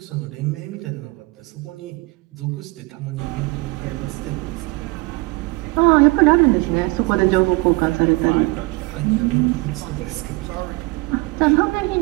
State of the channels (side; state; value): left; quieter; 25.0 dB